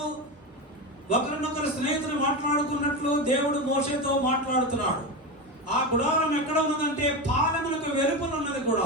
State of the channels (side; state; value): both; normal; correlation 0.19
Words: ఒకరినొకరు స్నేహితులు మాట్లాడుకున్నట్లు దేవుడు మోషేతో మాట్లాడుతున్నాడు. ఆ గుడారం ఎక్కడ ఉన్నదంటే పాలెములకు వెలుపల ఉన్నది